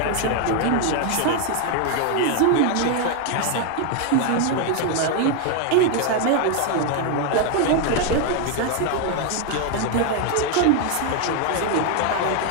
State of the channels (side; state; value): both; different; correlation 0.01